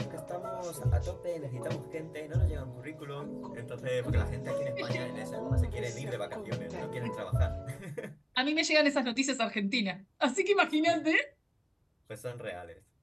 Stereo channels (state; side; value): identical; both; correlation 1.00